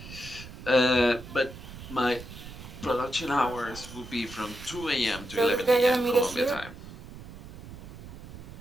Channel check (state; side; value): noise; right; rumble, 14 dB below the sound